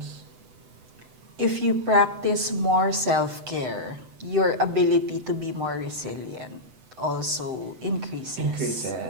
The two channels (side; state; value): left; late; 7.9 ms